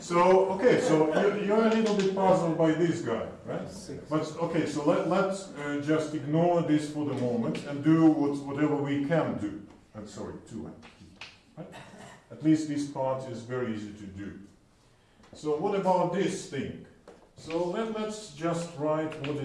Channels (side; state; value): both; identical; correlation 1.00